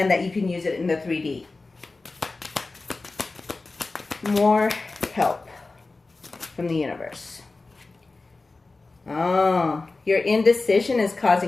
that you can use it in the 3D. More help from the universe. Oh, your indecision is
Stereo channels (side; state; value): right; quieter; 3.5 dB